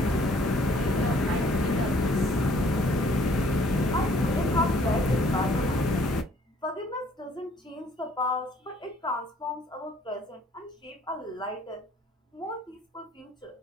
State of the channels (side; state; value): both; normal; correlation 0.60